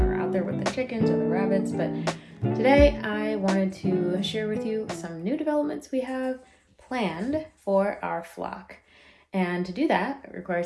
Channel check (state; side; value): identical; both; correlation 1.00